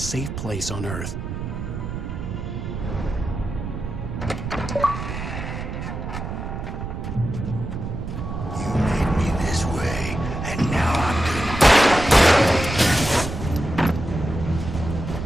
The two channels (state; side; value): noise; right; rumble, 6 dB below the sound